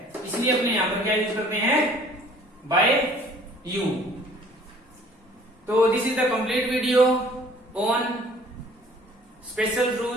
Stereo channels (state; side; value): normal; both; correlation 0.54